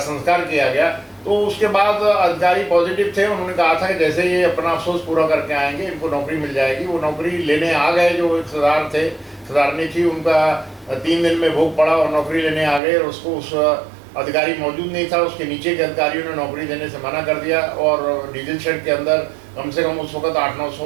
किया गया। तो उसके बाद अधिकारी पॉजिटिव थे, उन्होंने कहा था कि जैसे ये अपना अफसोस पूरा करके आएंगे इनको नौकरी मिल जाएगी। वो नौकरी लेने आ गए जो एक सरदार थे, सुधारनी थी, उनका 3 दिन में भोग पड़ा और नौकरी लेने आ गए, और उसको उस अधिकारी मौजूद नहीं था, उसके नीचे के अधिकारियों ने नौकरी देने से मना कर दिया। और डीजल शेड के अंदर कम से कम उस वक्त 800-900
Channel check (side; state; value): left; drops out; at 12.8 s